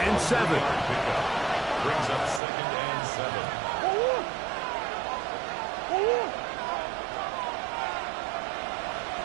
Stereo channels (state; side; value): drops out; left; at 2.4 s